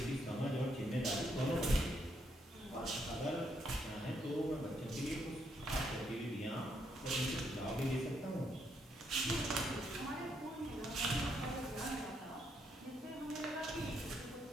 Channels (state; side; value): normal; both; correlation 0.76